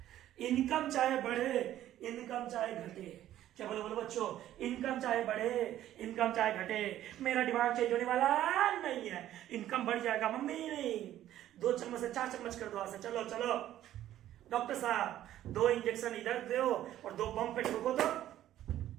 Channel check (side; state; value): left; quieter; 12.7 dB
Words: Income चाहे बढ़े, इनकम चाहे घटे, क्या बोलो बोलो बच्चों, इनकम चाहे बढ़े इनकम चाहे घटे, मेरा दिमाग चेंज होने वाला नहीं है। इनकम बढ़ जाएगा मम्मी, नहीं 2 चम्मच से 4 चम्मच कर दो आज से, चलो चलो डॉक्टर साहब 2 इंजेक्शन इधर दो और 2 बम पे ठोको तो